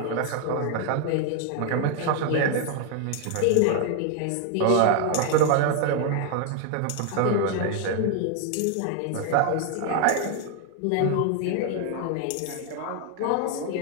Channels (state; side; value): different; both; correlation 0.00